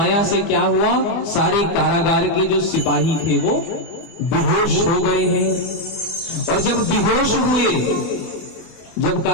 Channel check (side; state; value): right; late; 25 ms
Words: से क्या हुआ, सारे कारागार के जो सिपाही थे वो बेहोश हो गए हैं। और जब बेहोश हुए, जब